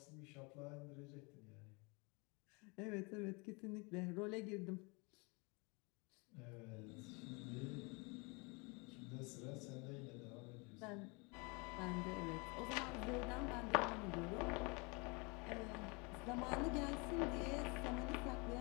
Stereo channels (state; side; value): quieter; right; 29.6 dB